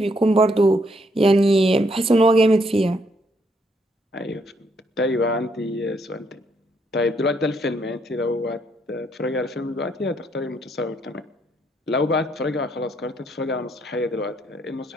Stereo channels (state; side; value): normal; both; correlation 0.72